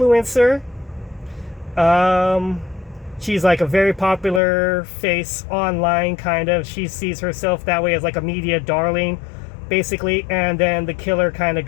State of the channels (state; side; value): drops out; right; at 4.4 s